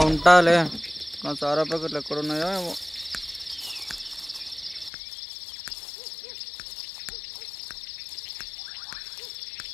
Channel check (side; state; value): right; drops out; at 4.9 s